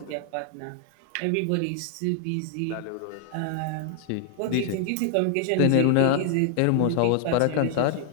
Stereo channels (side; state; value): both; different; correlation 0.00